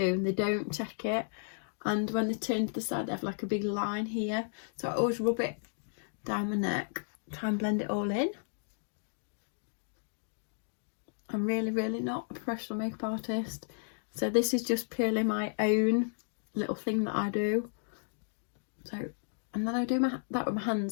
and they don't check it. And when they turn to the side, they have like a big line here. So I always rub it down my neck, try and blend it all in. I'm really, really not a professional makeup artist. So this is just purely my own little thing that I do. So, and then I do that with my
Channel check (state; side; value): silent; right; digital silence